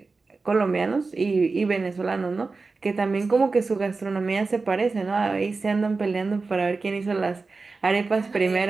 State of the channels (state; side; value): quieter; left; 4.0 dB